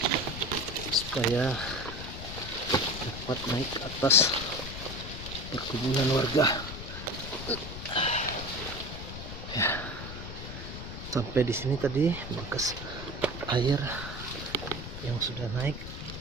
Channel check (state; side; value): noise; left; rumble, 9 dB below the sound